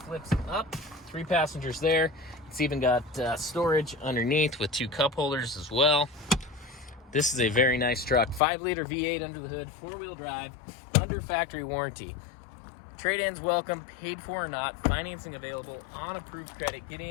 up. 3 passengers there. It's even got storage underneath with 2 cup holders as well. This is a very nice truck. 5-liter V8 under the hood, 4-wheel drive, under factory warranty. Trade-ins welcome, paid for or not, financing available, on approved credit. Get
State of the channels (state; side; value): drops out; right; at 8.4 s